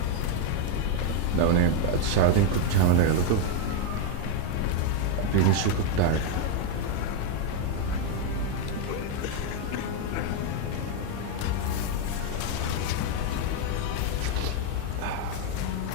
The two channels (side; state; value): both; different; correlation 0.01